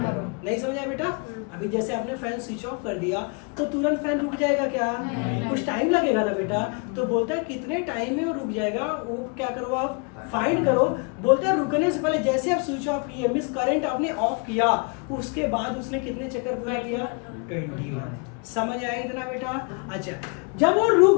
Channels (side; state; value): right; quieter; 34.7 dB